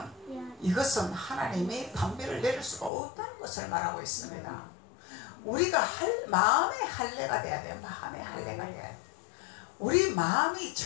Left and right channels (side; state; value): right; drops out; at 2.9 s